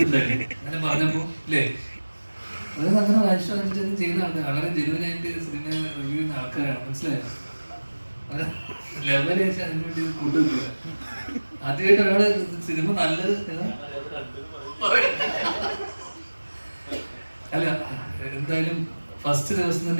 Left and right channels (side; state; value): both; inverted; correlation -1.00